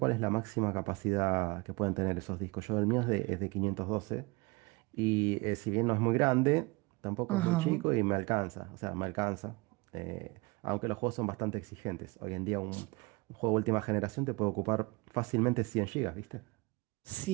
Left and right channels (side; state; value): left; quieter; 25.5 dB